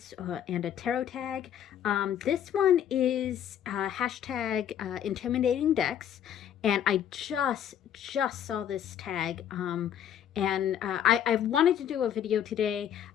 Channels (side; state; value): right; quieter; 9.8 dB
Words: and a tarot tag. This one is hashtag intimidating decks, and I just saw this tag. I wanted to do a video today.